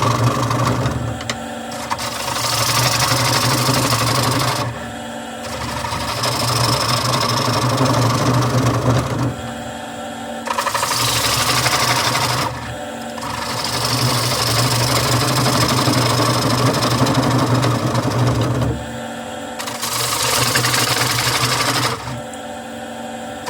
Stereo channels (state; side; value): identical; both; correlation 1.00